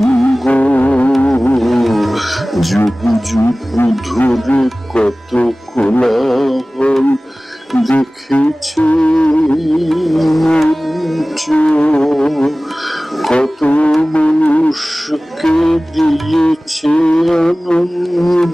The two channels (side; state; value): both; normal; correlation 0.98